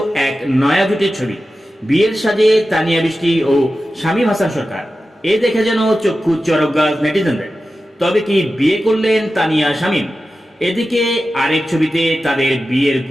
এক নয়া জুটির ছবি। বিয়ের সাজে তানিয়া বৃষ্টি ও শামীম হাসান সরকার। এ দেখে যেন চক্ষু চরক গাছ নেটিজেনদের। তবে কি বিয়ে করলেন তানিয়া শামীম? এদিকে আরেক ছবিতে তাদের বিয়ের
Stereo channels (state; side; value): normal; both; correlation 0.93